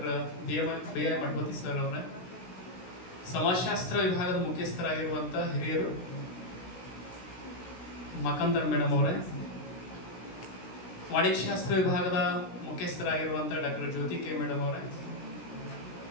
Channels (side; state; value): right; late; 16 ms